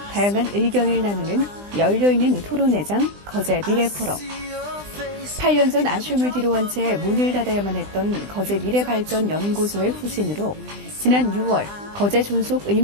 다양한 의견을 나누는 열려있는 토론회장 거제 미래포럼. 8년 전 아쉬움을 뒤로한 채 문을 닫아야만 했던 거제 미래발전연구소의 후신으로 지난 6월 거제 존속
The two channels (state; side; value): late; left; 20 ms